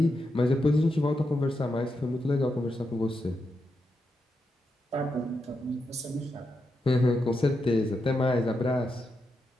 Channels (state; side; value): normal; both; correlation 0.85